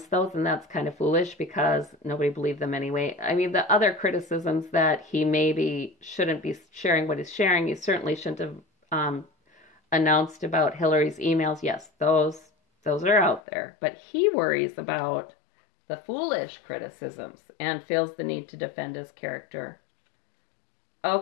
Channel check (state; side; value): drops out; right; at 13.4 s